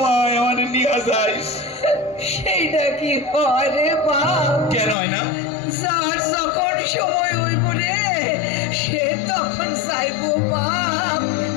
আমারে নিয়ে যাইস। সেইটা কি হয় রে বাপ? কেন হয় না? যার যখন সময় হইব রে সে তখন যাইবো বাপ,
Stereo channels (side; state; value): right; drops out; at 5.0 s